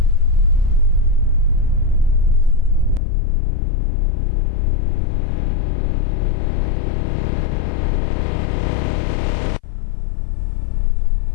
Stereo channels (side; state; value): right; drops out; at 3.0 s